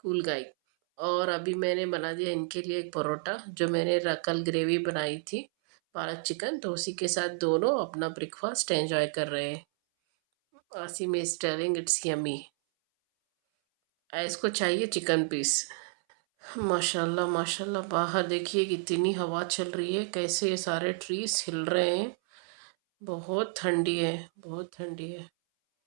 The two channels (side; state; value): left; silent; 58 dB below the other